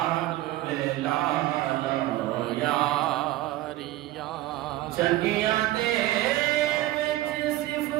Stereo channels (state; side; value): quieter; left; 15.8 dB